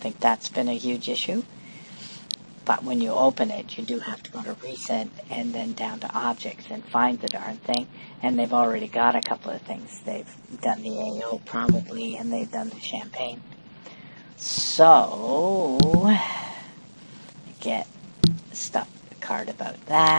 think that's been a huge issue. But when you open it, you do have to go to Recent and then down to Objects and find the darn thing. And they've already got a couple of things. They've done the AO probably, and they've done the Champagne. So, get stuff card about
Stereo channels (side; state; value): both; inverted; correlation -1.00